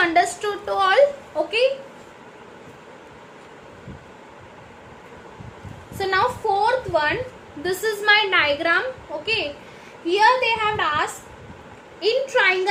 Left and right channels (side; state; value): both; identical; correlation 1.00